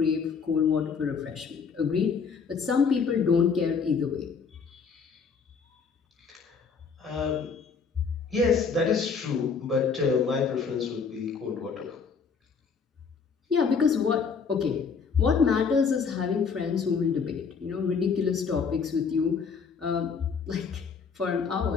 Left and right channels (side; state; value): right; quieter; 5.7 dB